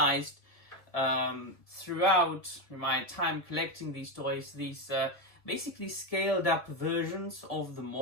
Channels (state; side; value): late; right; 1.6 ms